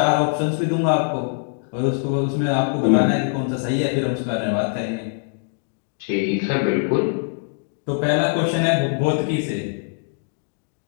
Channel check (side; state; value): right; silent; 64 dB below the other